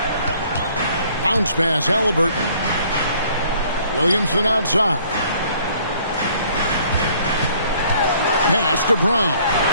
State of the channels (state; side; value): inverted; both; correlation -0.59